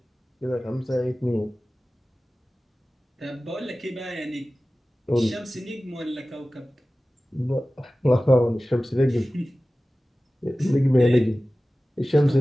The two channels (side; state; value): both; normal; correlation 0.96